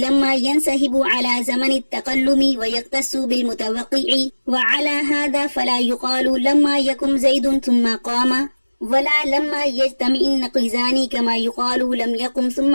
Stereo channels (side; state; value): both; inverted; correlation -1.00